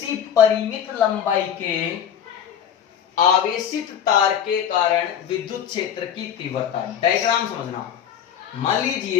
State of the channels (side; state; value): right; quieter; 8.9 dB